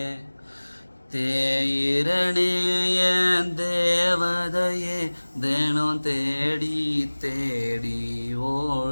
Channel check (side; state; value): both; inverted; correlation -1.00